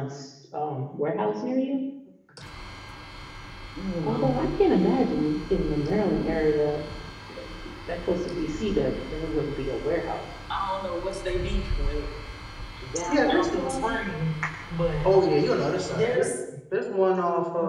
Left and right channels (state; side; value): identical; both; correlation 1.00